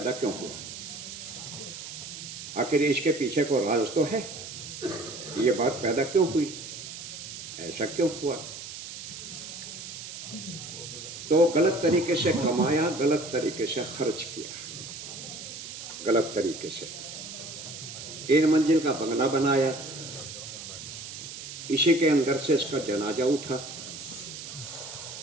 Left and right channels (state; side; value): noise; right; hiss, 10 dB below the sound